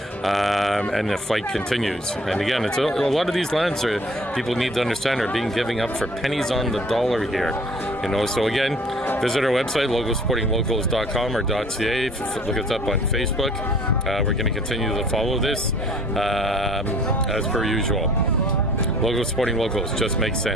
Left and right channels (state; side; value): normal; both; correlation 0.52